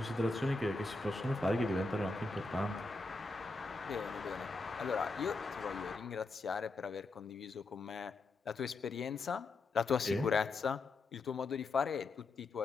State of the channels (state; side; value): quieter; right; 3.4 dB